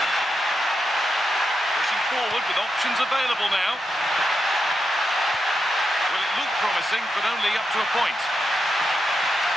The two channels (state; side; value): normal; both; correlation 0.86